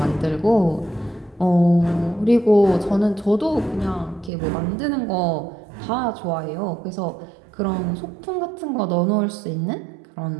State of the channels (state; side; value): drops out; left; at 4.3 s